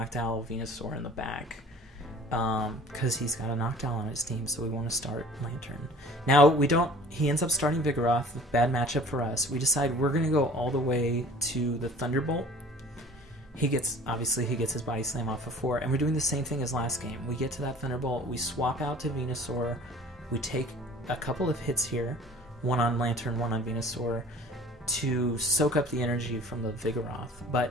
Venusaur in the back. Because he's got a Noctowl on his team, so we want to start Lanturn. Now, he ends up starting Vigoroth, bad matchup for us. We decide we're going to go all the way to the Thunderbolt. Obviously he gets his Body Slam off of 4, and we're doing the same thing as last game. We get to that Thunderbolt, we swap out to Venusaur, we take a couple of hits here, one on Lanturn, one on Venusaur, to soak up the energy from the Vigoroth. But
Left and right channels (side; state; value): both; normal; correlation 0.47